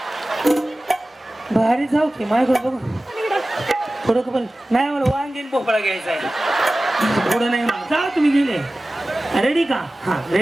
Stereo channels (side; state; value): both; normal; correlation 0.96